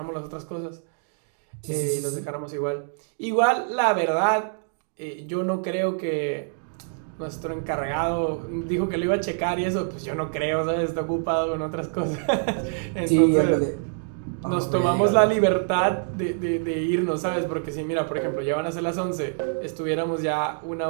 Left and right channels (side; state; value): left; silent; digital silence